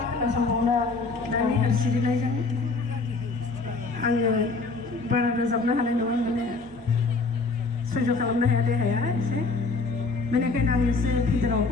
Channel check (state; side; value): quieter; right; 4.0 dB